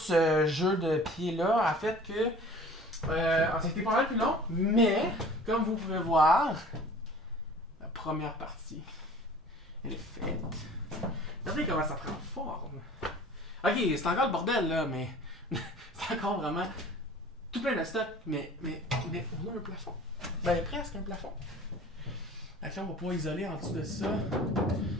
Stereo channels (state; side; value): normal; both; correlation 0.45